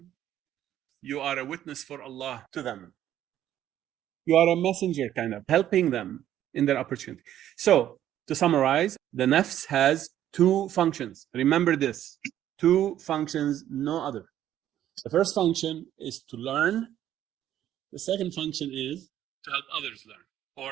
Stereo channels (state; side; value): quieter; left; 11.7 dB